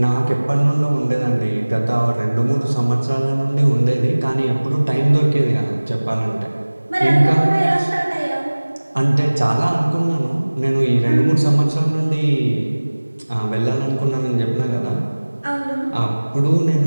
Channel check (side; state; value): both; inverted; correlation -1.00